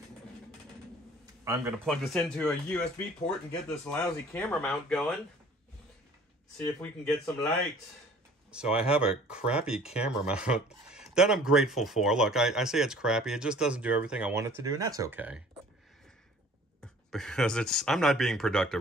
I'm going to plug this into a USB port and get this lousy camera mount going. See if we can get some light. So I have a crappy camera mount that I'm grateful for. Look, I say it's crappy. It just doesn't do everything I want it to do, and that's okay. Because I'm not being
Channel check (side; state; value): both; normal; correlation 0.51